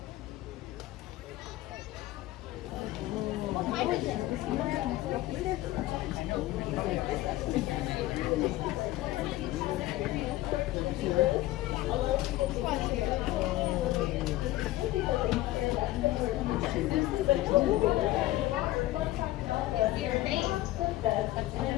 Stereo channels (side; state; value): right; quieter; 16.5 dB